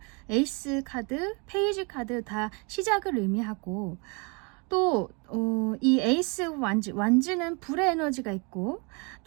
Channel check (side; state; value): left; quieter; 32.1 dB